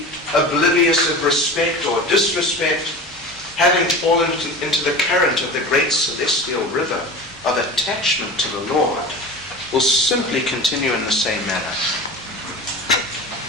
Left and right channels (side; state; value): both; normal; correlation 0.33